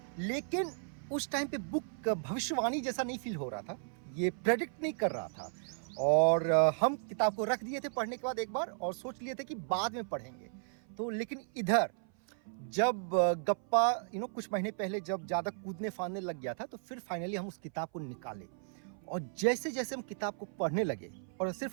लेकिन उस टाइम पे बुक भविष्यवाणी जैसा नहीं फील हो रहा था, ये प्रेडिक्ट नहीं कर रहा था। और हम किताब को रख दिए थे पढ़ने के बाद एक बार और सोच लिए थे कि बाद में पढ़ेंगे। तो लेकिन इधर जब गप्पा कुछ महीने पहले जब ज़्यादा कूदने फांदने लग गया था, तो फिर फाइनली हम उस किताब को निकाले और जैसे जैसे हम किताब को पढ़ने लगे, और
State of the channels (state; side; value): silent; left; 54 dB below the other